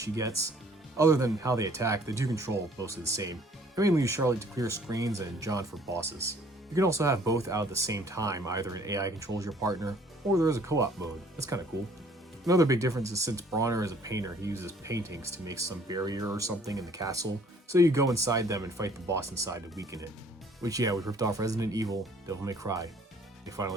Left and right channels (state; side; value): normal; both; correlation 0.58